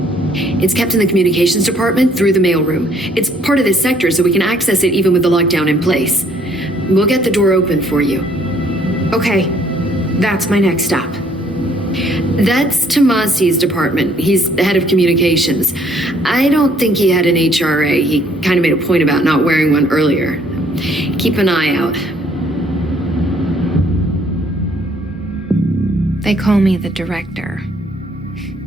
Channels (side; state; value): both; normal; correlation 0.63